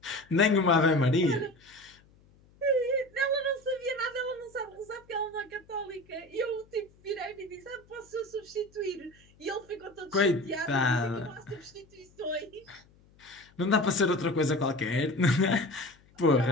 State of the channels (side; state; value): left; noise; hum, 29 dB below the sound